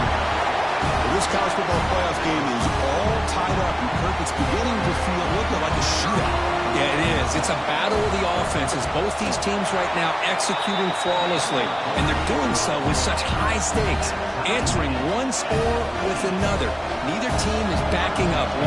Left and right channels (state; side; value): identical; both; correlation 1.00